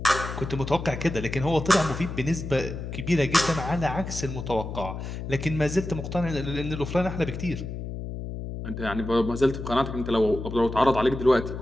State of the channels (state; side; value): noise; left; hum, 7 dB below the sound